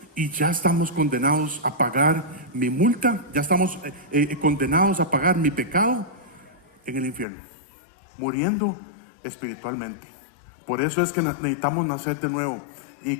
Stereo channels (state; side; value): drops out; right; at 7.2 s